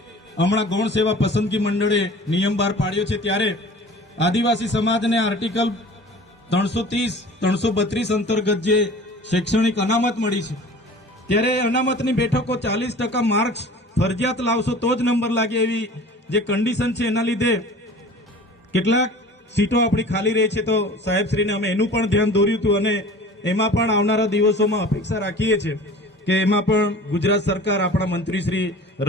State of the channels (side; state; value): both; normal; correlation 0.42